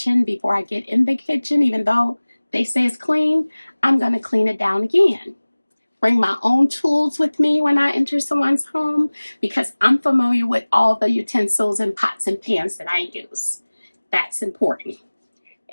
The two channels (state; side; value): inverted; both; correlation -1.00